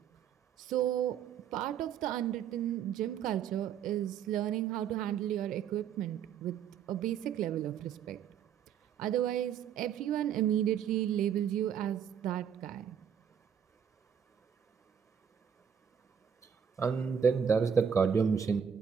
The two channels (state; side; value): quieter; left; 8.1 dB